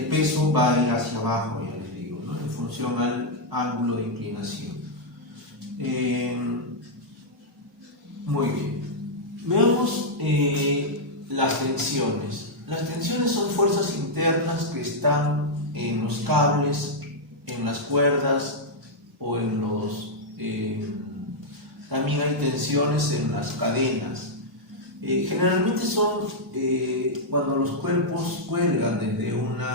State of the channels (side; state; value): both; normal; correlation -0.04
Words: peso va a ir hacia abajo, ya les digo, ¿no? En función al ángulo de inclinación. Muy bien. Veamos las tensiones. Las tensiones son fuerzas internas que están en los cables, en las cuerdas o en los... también hay tensiones en las cadenas. Generalmente son cuando los cuerpos cuelgan desde